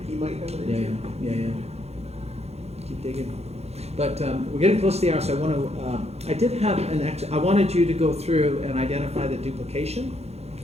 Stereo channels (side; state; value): left; late; 0.31 ms